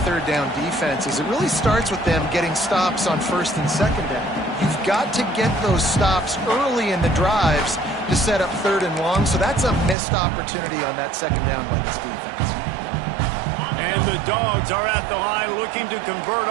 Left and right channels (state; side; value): drops out; left; at 10.0 s